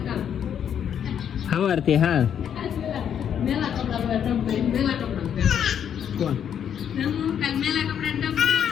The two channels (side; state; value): right; quieter; 8.8 dB